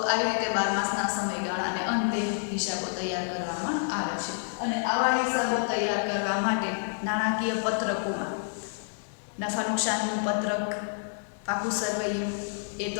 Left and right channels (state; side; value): silent; right; digital silence